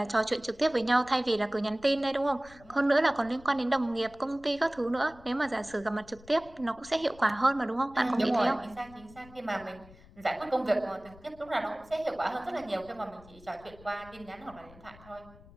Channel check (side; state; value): left; noise; rumble, 22 dB below the sound